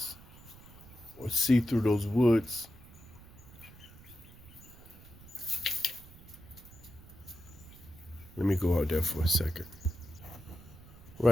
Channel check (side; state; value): right; noise; rumble, 20 dB below the sound